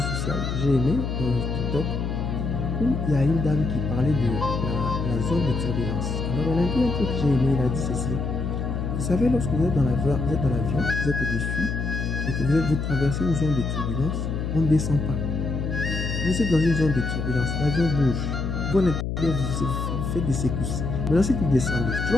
sociaux, j'ai aimé TikTok, où il y a une dame qui parlait de la zone de turbulence. Alors elle a dit un truc que j'ai aimé, elle a dit ceci. Vous savez, lorsque vous êtes dans l'avion, vous êtes au-dessus, et que vous traversez une zone de turbulence, on ne descend pas. Vous êtes dans une zone de turbulence, l'avion bouge. Vous, à l'intérieur, vous faites des secousses. Maintenant, si tu descends, tu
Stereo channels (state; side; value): noise; left; hum, 2 dB below the sound